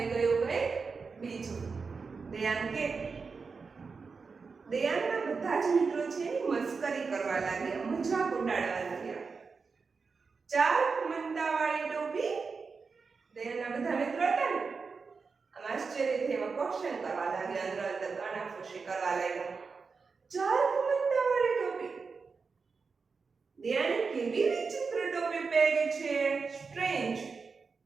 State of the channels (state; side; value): quieter; left; 4.9 dB